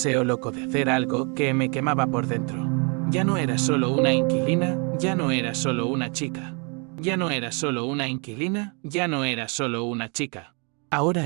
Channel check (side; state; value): left; quieter; 34.8 dB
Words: loco de hacer algo que me quemaba por dentro. Ya no era solo una inquilina, ya no era solo una chica. Ya no era solo una inquilina, ya no era solo una chica. Ahora